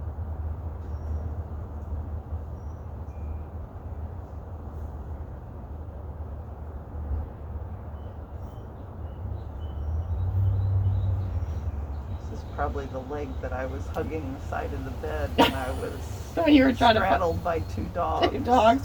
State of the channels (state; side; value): identical; both; correlation 1.00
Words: Probably the leg that I was hugging the side of the bed when I was When you were trying straddled by 2 dogs. 2 dogs